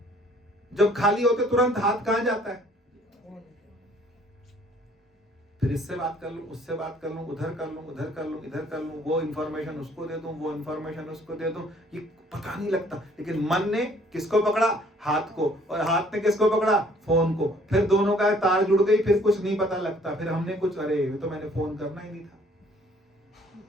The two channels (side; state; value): both; normal; correlation 0.59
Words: जब खाली होते तुरंत हाथ कहां जाता है? फिर इससे बात कर लूं, उससे बात कर लूं, उधर कर लूं, उधर कर लूं, इधर कर लूं, वो इंफॉर्मेशन उसको दे दूं, वो इंफॉर्मेशन उसको दे दूं, ये पता नहीं लगता। लेकिन मन ने किसको पकड़ा? हाथ को, और हाथ ने किसको पकड़ा? फोन को। फिर दोनों का तार जुड़ गई, फिर कुछ नहीं पता लगता। फिर हमने कुछ, अरे ये तो मैंने फोन करना ही नहीं था।